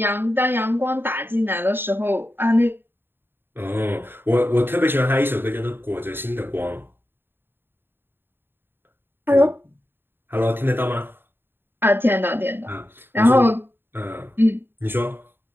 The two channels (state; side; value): late; left; 0.10 ms